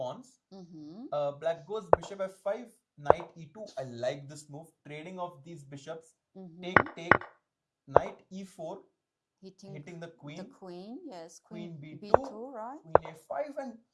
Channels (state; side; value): identical; both; correlation 1.00